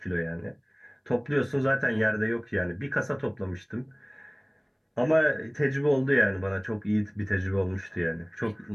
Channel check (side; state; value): both; identical; correlation 1.00